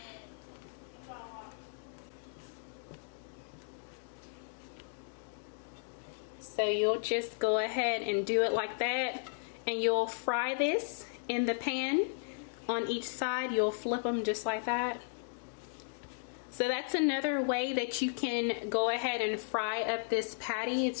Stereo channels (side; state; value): right; silent; digital silence